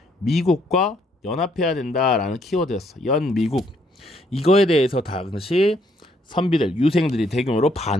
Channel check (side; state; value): both; normal; correlation 0.69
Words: 미국과 연합해야 된다라는 키워드였어. 연미국. 이거에 대해서 당시 선비들, 유생들이 대규모로